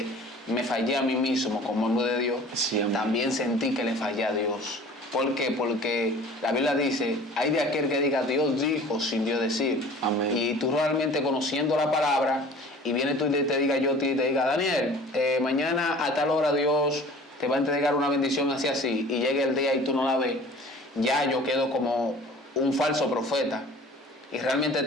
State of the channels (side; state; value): both; normal; correlation 0.46